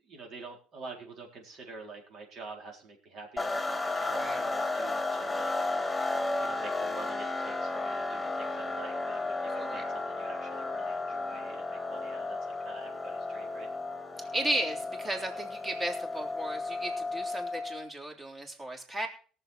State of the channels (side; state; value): both; normal; correlation 0.89